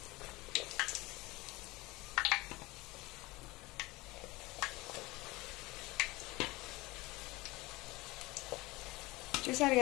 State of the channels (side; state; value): right; quieter; 21.6 dB